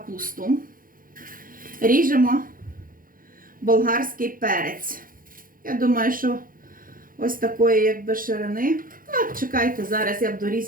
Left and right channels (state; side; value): late; left; 0.41 ms